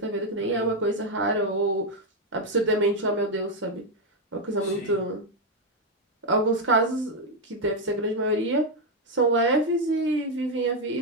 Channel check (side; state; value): both; normal; correlation 0.03